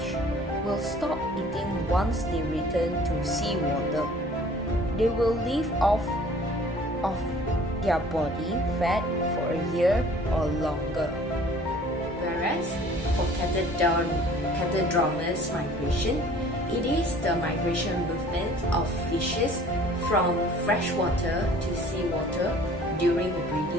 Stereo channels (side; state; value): both; normal; correlation 0.51